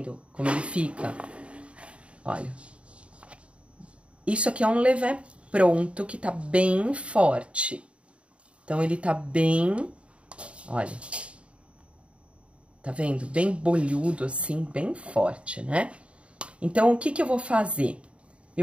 como ele fica? Olha. Isso aqui é um levain pronto, que tá bem forte. Então, ele tá bem... Olha. Tá vendo? Bem bolhudo, assim, bem forte, né? Então, o que que eu vou fazer?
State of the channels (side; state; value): left; late; 0.060 ms